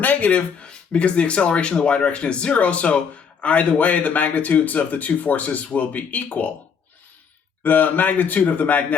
because the acceleration in the y direction is 0, so either way, the magnitudes of the two forces will be equal. The magnitude of the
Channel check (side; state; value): right; quieter; 6.5 dB